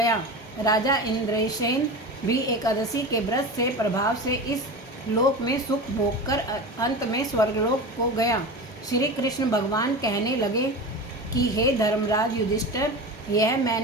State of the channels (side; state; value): both; normal; correlation 0.28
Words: राजा इंद्रसेन भी एकादशी के व्रत से प्रभाव से इस लोक में सुख भोग कर अंत में स्वर्गलोक को गया। श्री कृष्ण भगवान कहने लगे कि हे धर्मराज युधिष्ठिर, यह